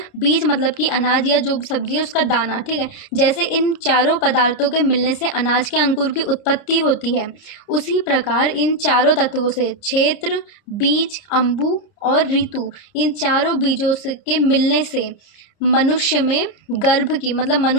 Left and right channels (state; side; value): late; right; 30 ms